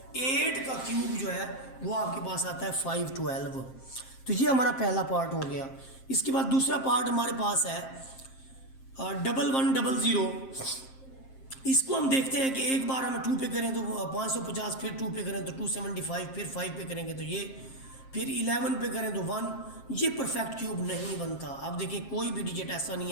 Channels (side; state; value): right; late; 7.5 ms